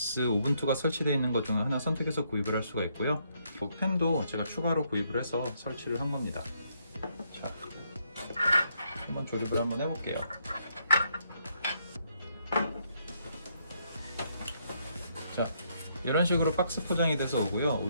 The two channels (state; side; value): inverted; both; correlation -0.74